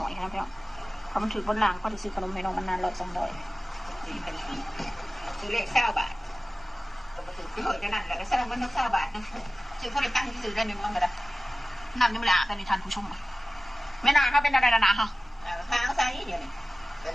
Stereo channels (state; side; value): normal; both; correlation 0.96